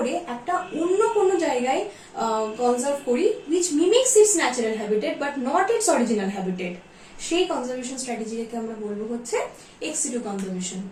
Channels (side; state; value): both; identical; correlation 1.00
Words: একটা অন্য কোনো জায়গায় কনজার্ভ করি, which mimics its natural habitat but not its original habitat, সেই কনজারভেশন স্ট্র্যাটেজিকে আমরা বলবো হচ্ছে এক্স সিটু কনজারভেশন।